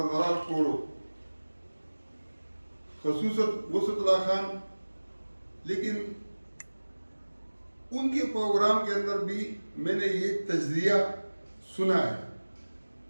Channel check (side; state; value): both; inverted; correlation -1.00